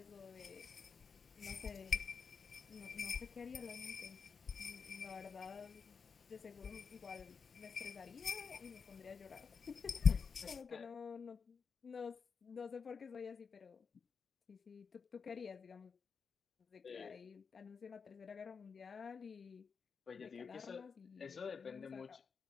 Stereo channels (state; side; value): quieter; right; 5.7 dB